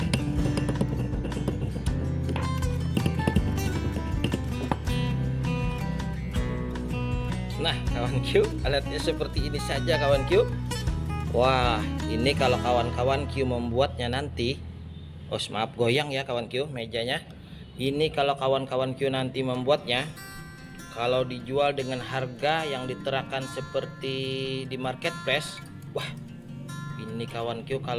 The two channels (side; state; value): both; identical; correlation 1.00